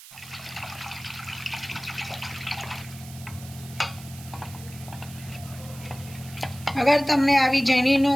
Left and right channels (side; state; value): right; noise; hiss, 17 dB below the sound